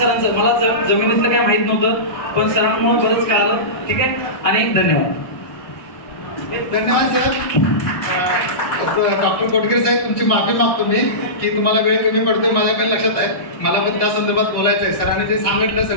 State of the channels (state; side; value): late; right; 1.6 ms